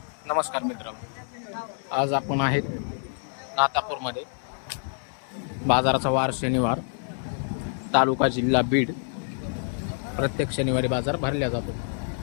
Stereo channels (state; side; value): silent; right; 60 dB below the other